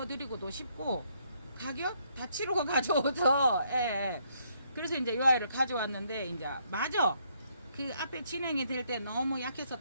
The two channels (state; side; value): inverted; both; correlation -0.71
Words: 싶고, 가격 다 치르고 가져오죠. 예, 예. 그래서 이제 이 아이를 가져왔는데 이제 마저 그 앞에 진행이 될 때 너무